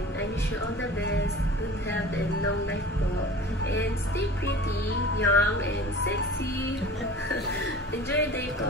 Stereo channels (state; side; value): normal; both; correlation 0.40